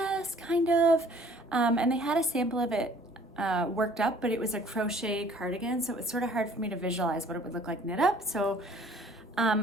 kind of. And they had a sample of it worked up, but it was a crochet cardigan, so it was sort of hard for me to visualize what it would look like knit up. So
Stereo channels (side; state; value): both; normal; correlation 0.55